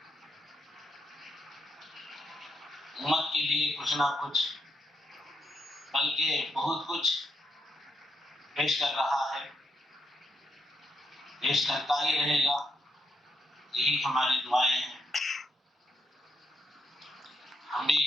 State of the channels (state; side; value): normal; both; correlation 0.78